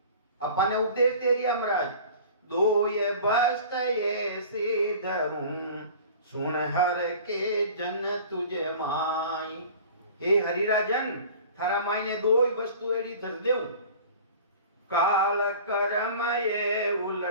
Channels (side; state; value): both; inverted; correlation -0.42